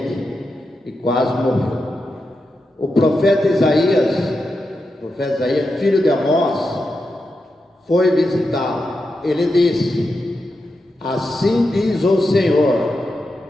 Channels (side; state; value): both; normal; correlation 0.88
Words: e quase morreu. O profeta Isaías, filho de Amós, foi visitá-lo. Ele disse: assim diz o